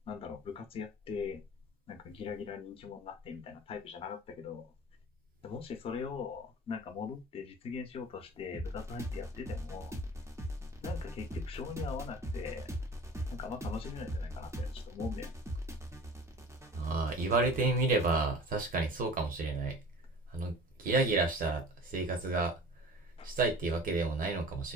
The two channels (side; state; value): both; normal; correlation 0.42